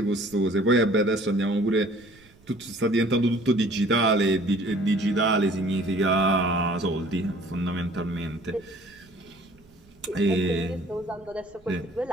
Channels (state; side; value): noise; right; rumble, 28 dB below the sound